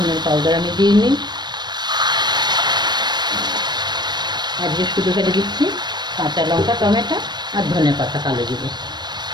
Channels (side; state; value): left; late; 0.21 ms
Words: পাউডার আমি দিইনি, আজকে শুধু ফেলে দিচ্ছি কাঁচা লঙ্কা, টমেটো আর ধনেপাতা, কালো জিরে।